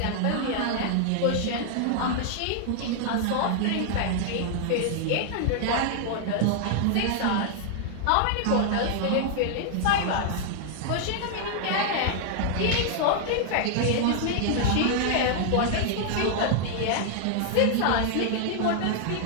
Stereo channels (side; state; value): both; different; correlation 0.00